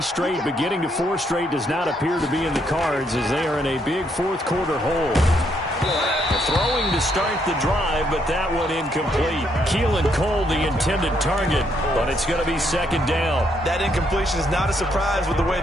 straight, but getting to 4 straight does not appear to be in the cards as they are in a big fourth quarter hole. Throwing to start the drive, but that one incomplete. Keelan Cole, the intended target, but it's going to be second down. That incompletion is not a surprise with the way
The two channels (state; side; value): normal; both; correlation 0.73